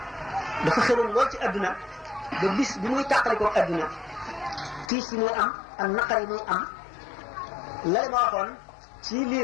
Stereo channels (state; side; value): drops out; right; at 4.9 s